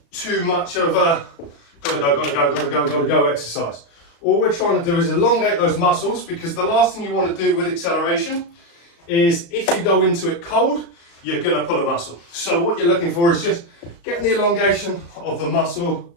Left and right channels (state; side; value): late; right; 35 ms